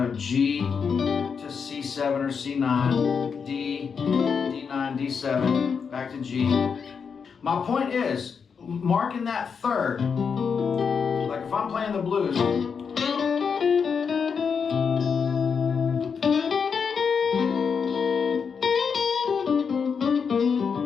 G to C7 or C9, D, D9, D7, back to G. My point is, marking that third, like if I'm playing the blues,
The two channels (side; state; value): right; quieter; 6.1 dB